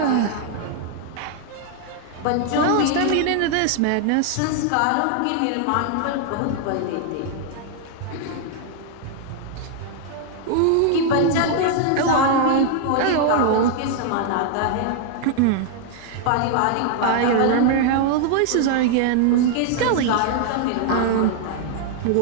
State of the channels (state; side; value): different; both; correlation 0.00